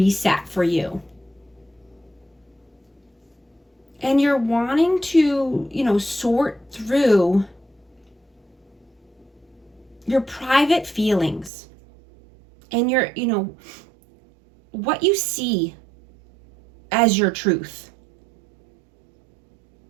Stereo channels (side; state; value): left; drops out; at 11.5 s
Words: for you. And you're wanting to, sort through your private feelings. And your, what you see as your truth,